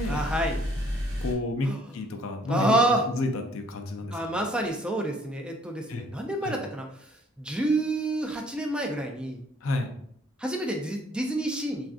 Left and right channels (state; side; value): normal; both; correlation 0.61